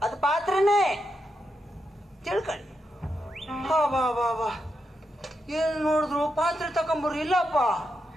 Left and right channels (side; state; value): both; normal; correlation 0.85